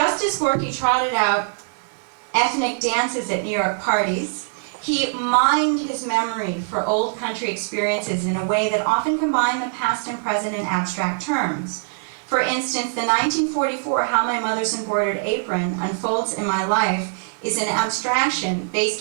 as Gorky trotted out ethnic dances at New York parties, he mined his memory for old country experiences in a way that often combined the past and present in abstract terms. For instance, the 1944 How My Mother's Embroidered Apron Unfolds in My Life is an abstraction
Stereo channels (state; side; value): silent; left; digital silence